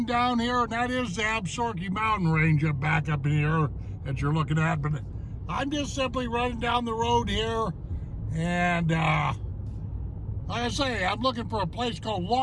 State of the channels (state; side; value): identical; both; correlation 1.00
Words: down here, and that is the Absaroka Mountain Range back up in here that you're looking at. But I'm just simply running down the road here, and like I say, I'm looking for a place called